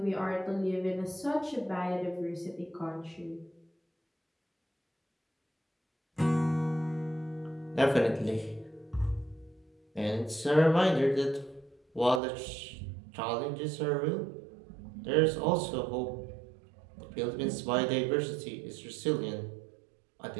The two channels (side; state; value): left; drops out; at 12.2 s